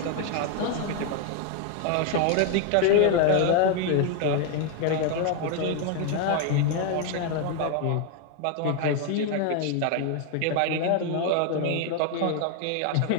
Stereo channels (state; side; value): different; both; correlation 0.01